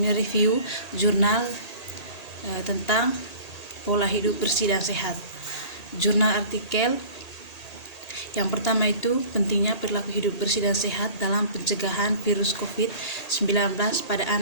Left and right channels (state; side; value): late; right; 1.8 ms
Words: mereview jurnal tentang pola hidup bersih dan sehat. Jurnal artikel yang pertama itu pentingnya perilaku hidup bersih dan sehat dalam pencegahan virus COVID-19 pada